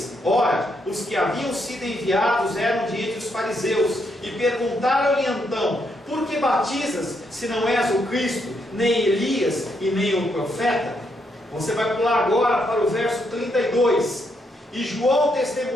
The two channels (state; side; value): normal; both; correlation 0.77